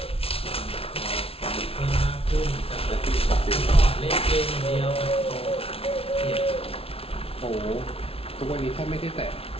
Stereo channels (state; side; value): late; right; 0.27 ms